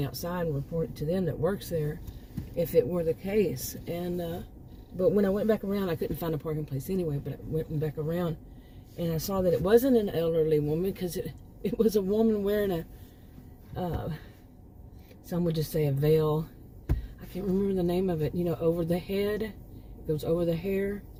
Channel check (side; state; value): both; identical; correlation 1.00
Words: outside and report it to them that works there, if it were the case. And But when I went back around, I couldn't find a parking place anyway, but I went back around, and I saw that it wasn't an elderly woman, because it was a woman wearing some would just say a veil. I can't remember the name of it, you know, over the head. It goes over the hair,